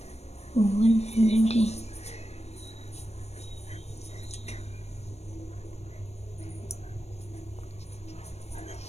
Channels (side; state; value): right; late; 0.31 ms